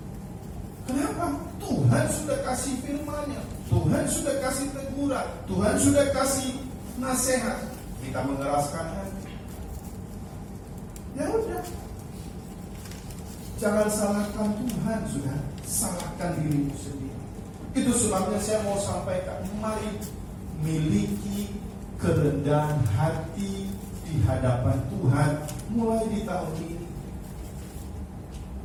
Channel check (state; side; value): identical; both; correlation 1.00